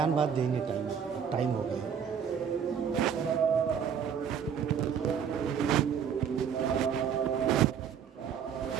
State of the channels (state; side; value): quieter; left; 7.7 dB